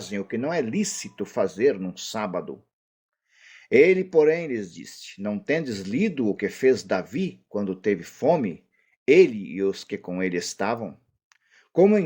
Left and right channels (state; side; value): identical; both; correlation 1.00